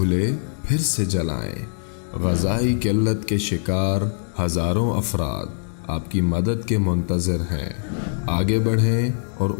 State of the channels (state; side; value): silent; right; digital silence